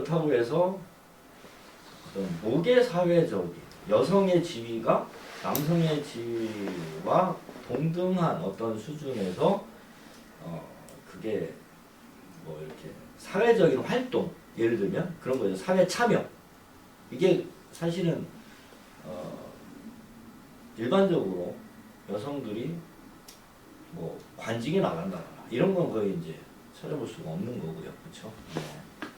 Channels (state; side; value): identical; both; correlation 1.00